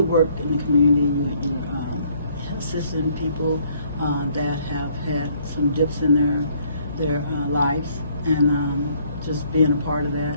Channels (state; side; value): inverted; both; correlation -0.64